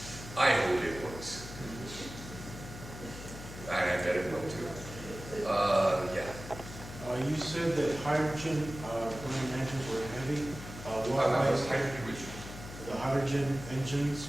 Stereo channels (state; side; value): noise; left; hum, 12 dB below the sound